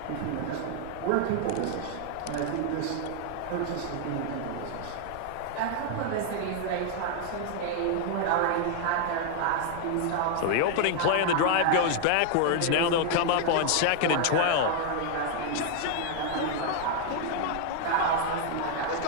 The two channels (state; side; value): different; both; correlation 0.00